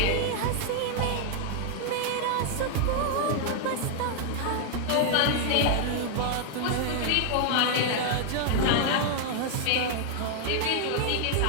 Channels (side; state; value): both; different; correlation 0.00